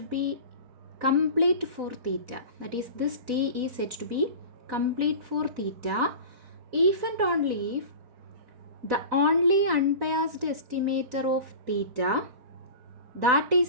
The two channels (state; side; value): late; left; 4.0 ms